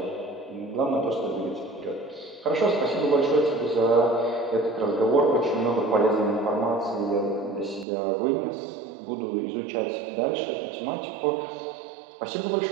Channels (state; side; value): drops out; left; at 7.9 s